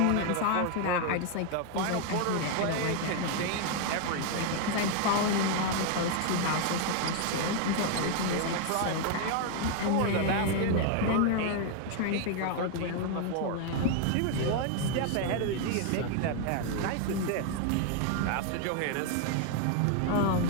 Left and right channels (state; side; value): different; both; correlation 0.00